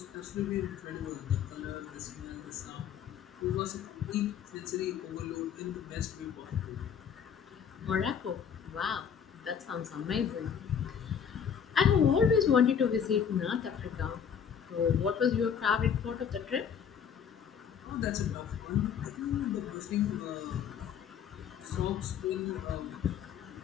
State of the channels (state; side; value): quieter; right; 7.8 dB